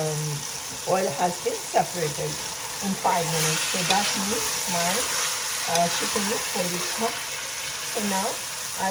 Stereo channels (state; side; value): identical; both; correlation 1.00